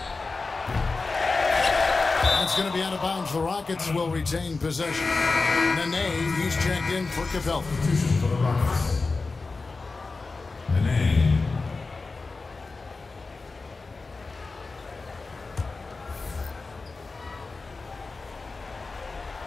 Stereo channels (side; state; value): right; quieter; 3.9 dB